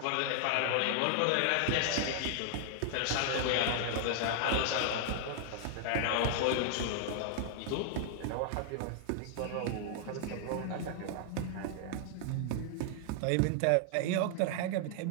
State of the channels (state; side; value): different; both; correlation 0.00